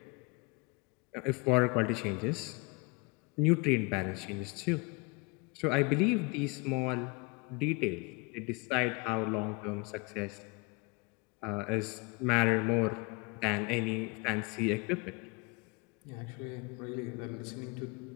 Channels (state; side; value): quieter; right; 28.3 dB